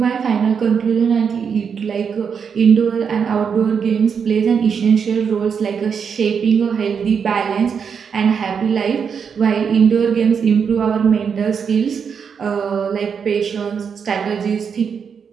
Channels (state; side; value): quieter; left; 6.6 dB